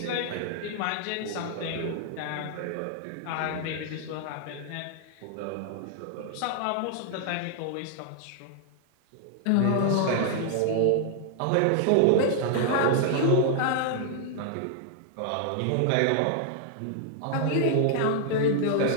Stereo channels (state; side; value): different; both; correlation -0.01